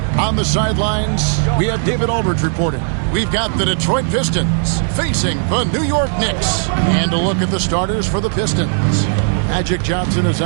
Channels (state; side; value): silent; left; digital silence